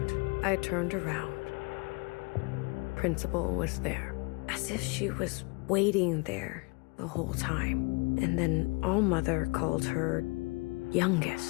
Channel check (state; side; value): quieter; right; 28.8 dB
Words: I turned around. Principal was there, as if she was waiting there the whole time. And then All-Mother called her